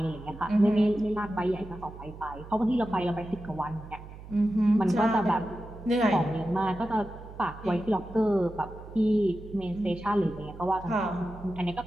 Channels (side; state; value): right; noise; hum, 15 dB below the sound